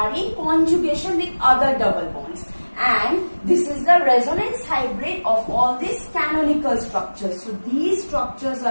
in conjugation with other double bonds. And this is the resonance hybrid of all these canonical structures. So these structures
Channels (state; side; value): inverted; both; correlation -1.00